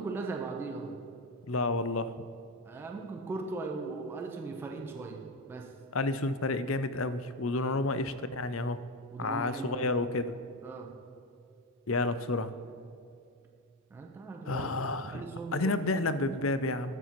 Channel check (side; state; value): both; normal; correlation 0.16